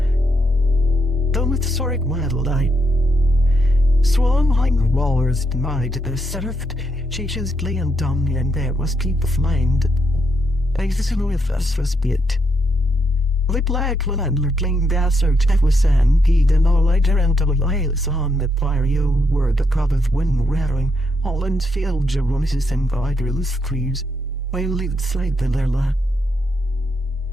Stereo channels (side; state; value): both; normal; correlation 0.78